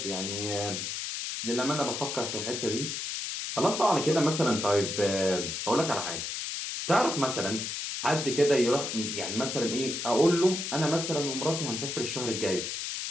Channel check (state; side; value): noise; left; hiss, 4 dB below the sound